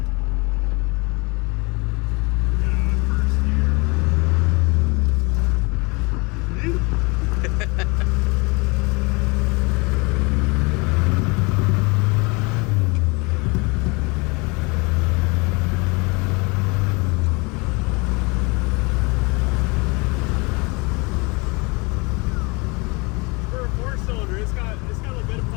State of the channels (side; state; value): right; quieter; 28.1 dB